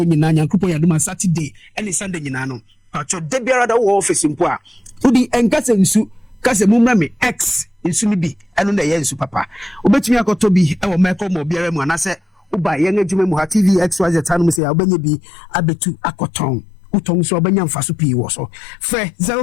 nyina nyankopon yadoma Saturday and Sunday nyina no pacho de biara da wo office mpo a udi enkase nsu kase mumra me x nsu ni bi eno na ye nsu papa obetumi akoto bi e wo meko mo biara mu anase uba ye ngejuma mu ha TV XYZ tanu mu se ya obanye bi abetu akoton Utong so abanya mfaso pi wo so fe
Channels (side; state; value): right; drops out; at 14.6 s